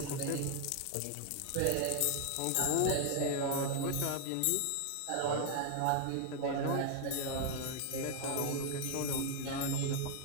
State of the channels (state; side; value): different; both; correlation 0.00